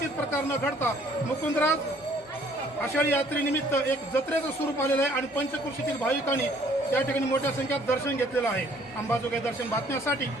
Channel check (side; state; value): both; normal; correlation 0.59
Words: प्रकार न घडता मुकुंदराज आषाढी यात्रेनिमित्त एक जत्रेचं स्वरूप आलेलं आहे आणि पंचक्रोशीतील भाविकांनी त्या ठिकाणी मोठ्या संख्येत दर्शन घेतलेलं आहे। अंबाजोगाई दर्शन बातम्यासाठी